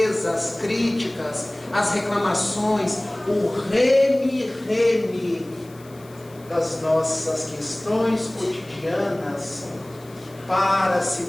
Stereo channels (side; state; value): left; noise; hiss, 25 dB below the sound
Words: as críticas, as reclamações, o reme-reme das nossas questões cotidianas, para se